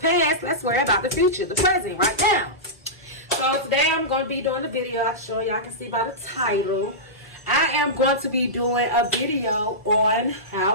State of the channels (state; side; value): normal; both; correlation -0.15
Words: Let's worry about the future, the present, right now. So today I'm going to be doing a video. I'll show y'all can see by the title. I am going to be doing a video on